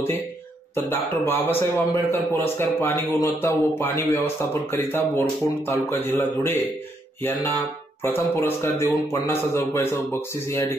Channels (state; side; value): normal; both; correlation 0.75